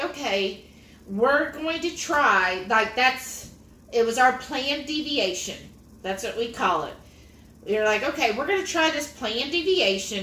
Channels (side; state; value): both; identical; correlation 1.00